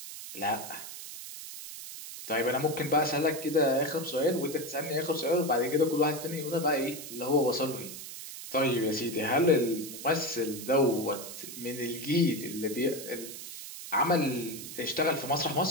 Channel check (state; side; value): noise; right; hiss, 11 dB below the sound